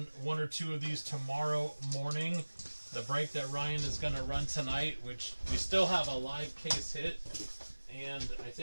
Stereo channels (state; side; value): inverted; both; correlation -1.00